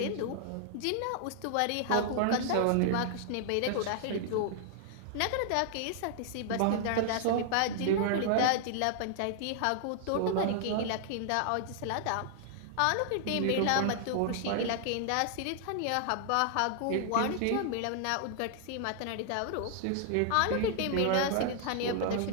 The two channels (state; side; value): different; both; correlation -0.01